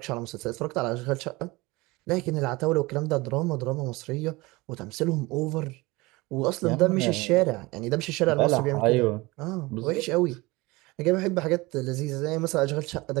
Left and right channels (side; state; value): left; quieter; 22.4 dB